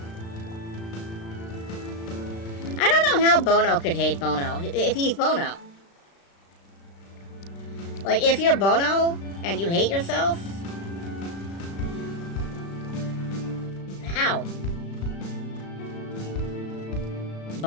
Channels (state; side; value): late; right; 36 ms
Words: I don't know how Bono could hate Bono, if he's Bono. Like, if you're Bono, and you hate yourself? How?